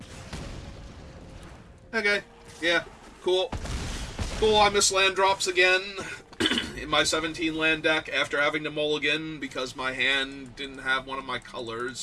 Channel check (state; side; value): identical; both; correlation 1.00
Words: Okay, yeah, cool. Cool, I miss land drops again in my 17 land deck after having to mulligan because my hand didn't have one of my